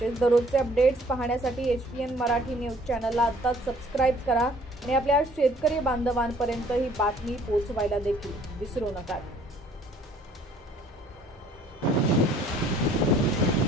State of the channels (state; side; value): normal; both; correlation 0.57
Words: दररोजचे अपडेट्स पाहण्यासाठी HPN मराठी न्यूज चॅनलला आत्ताच सबस्क्राइब करा आणि आपल्या शेतकरी बांधवांपर्यंत ही बातमी पोहोचवायला देखील विसरू नका।